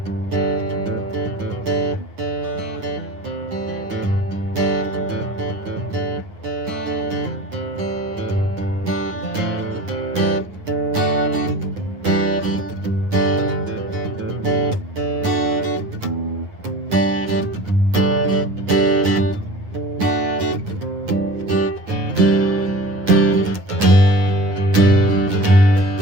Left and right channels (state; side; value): late; left; 9.2 ms